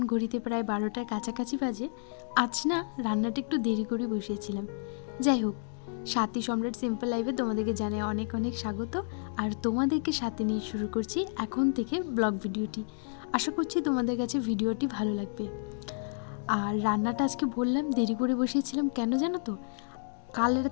ঘড়িতে প্রায় 12টার কাছাকাছি বাজে। আজ না রান্নাটা একটু দেরি করে বসিয়েছিলাম। যাই হোক, সাথী সম্রাট সিম্পল লাইফে তোমাদেরকে জানাই অনেক অনেক স্বাগত। আর তোমাদেরকে সাথে নিয়ে শুরু করছি এখন থেকে ব্লগ ভিডিওটি। আশা করছি তোমাদের কাছে ভিডিওটি ভালো লাগবে। আর রান্নাটা আজকে বললাম দেরি করে বসিয়েছিলাম কেন জানো তো? কাল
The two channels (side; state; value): right; silent; digital silence